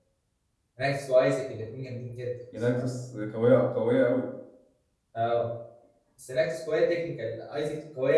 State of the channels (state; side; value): identical; both; correlation 1.00